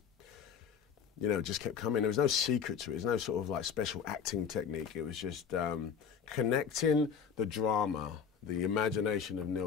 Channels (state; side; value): quieter; right; 7.1 dB